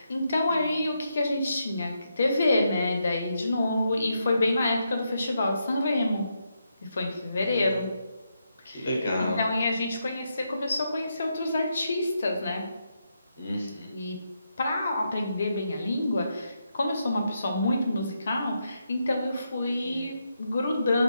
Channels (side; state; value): both; inverted; correlation -0.82